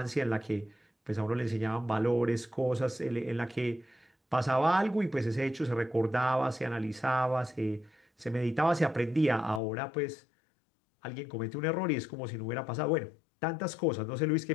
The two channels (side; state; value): right; drops out; at 9.6 s